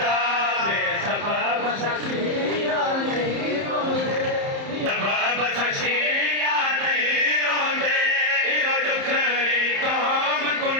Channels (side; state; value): left; late; 30 ms